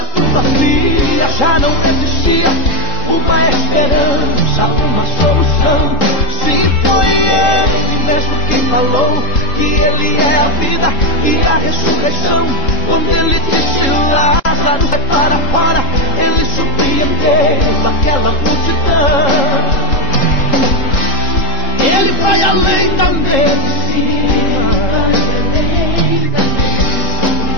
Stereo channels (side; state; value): right; late; 3.7 ms